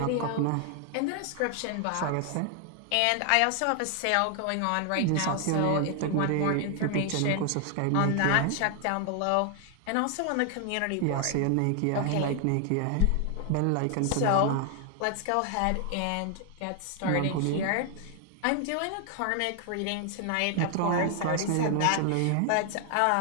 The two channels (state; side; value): different; both; correlation 0.00